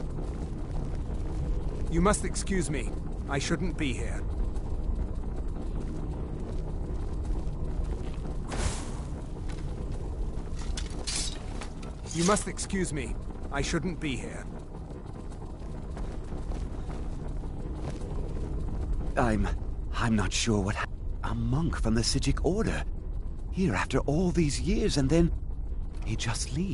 You must excuse me. I shouldn't be here. You must excuse me. I shouldn't be here. I'm not sure what a monk from the Psijic Order. Here after all these years, and then he just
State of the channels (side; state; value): both; identical; correlation 1.00